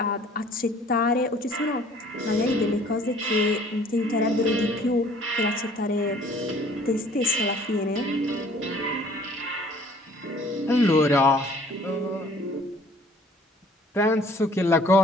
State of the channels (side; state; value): both; normal; correlation 0.55